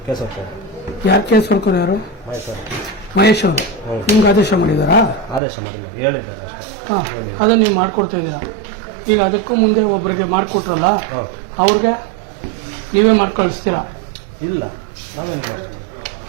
ಕೇಸ್ ವರ್ಕರು ಯಾರು ಸರ್ಕಾರ ಯಾರು ಮಹೇಶ್ ಅವರು ನಿಮ್ಗೆ ಆದೇಶ ಮಾಡಿದಾರಾ ಆದೇಶ ಮಾಡಿಲ್ಲ ಹೇಳಿದ್ದಾರೆ ಅಷ್ಟೇ ಹಾಂ ಅದನ್ನು ನೀವು ಮಾಡಿಕೊಡ್ತಾ ಇದ್ದೀರಾ ಈಗ ಅದಕ್ಕೂ ಮುಂದೆ ಒಬ್ಬರಿಗೆ ಮಾಡಿಕೊಟ್ರಲ್ಲ ಅವ್ರಿಗೆ ನೀವೇ ಮಾಡಿ ಕಳಿಸ್ತೀರಾ ಇಲ್ಲ ನಾವೇನು ಮಾಡ್ತೀವಿ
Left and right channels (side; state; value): left; drops out; at 5.4 s